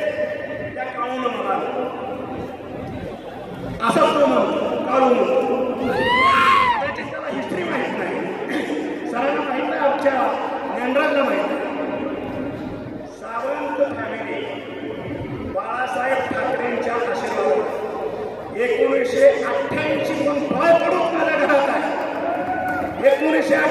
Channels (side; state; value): both; identical; correlation 1.00